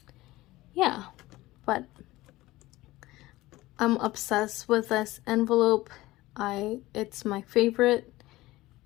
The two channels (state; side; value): quieter; right; 18.2 dB